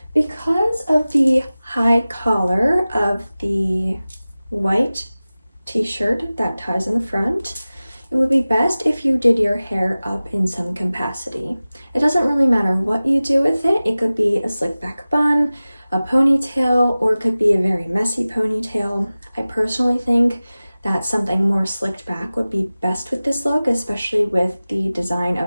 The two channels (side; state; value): both; inverted; correlation -0.97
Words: because of the high collar of the white t-shirt that ties in the front, it would be best if you did your hair up in some capacity. It doesn't really matter what you do with it. It could be a slick back bun, a ponytail, or it could be a very messy ponytail. I personally think that something more slicked back would be best with this look, especially with the design